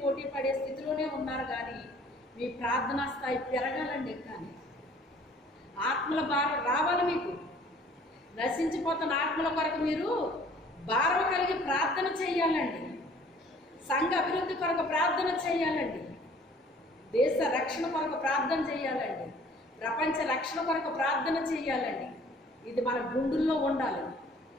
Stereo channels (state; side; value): normal; both; correlation 0.54